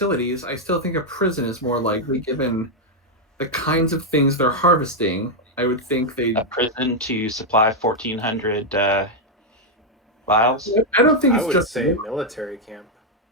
I still think a prison is more likely given the kinds of things they're harvesting. I would think they. A prison to supply 1,400 vials. I don't think I it's would just. say a military camp.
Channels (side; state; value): both; normal; correlation 0.00